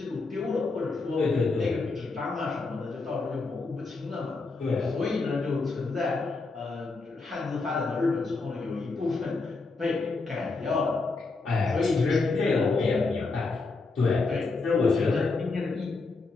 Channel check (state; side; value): quieter; right; 3.8 dB